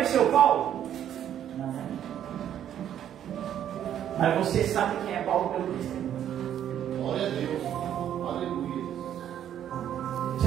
Paulo? Não. Mas você sabe quem é Paulo pelo testemunho. Glória a Deus, aleluia.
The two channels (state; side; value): quieter; left; 10.3 dB